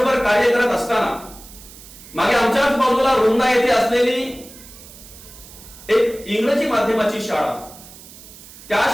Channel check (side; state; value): right; noise; hiss, 19 dB below the sound